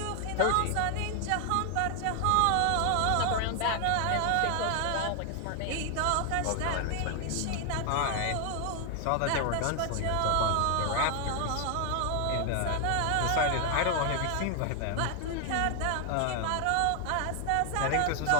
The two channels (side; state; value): both; different; correlation 0.00